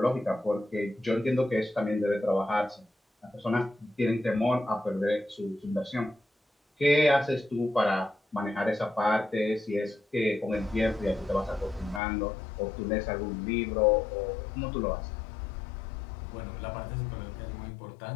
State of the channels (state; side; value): drops out; right; at 12.0 s